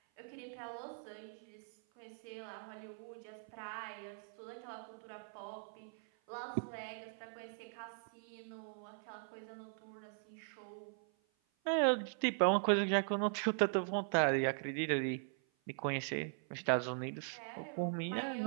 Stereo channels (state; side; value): silent; left; 51 dB below the other